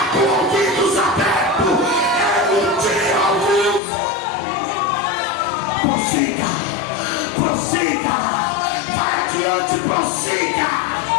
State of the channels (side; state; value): right; drops out; at 3.8 s